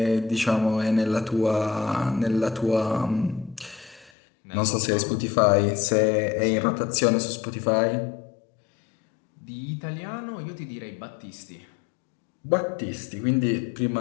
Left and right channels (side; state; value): right; drops out; at 4.1 s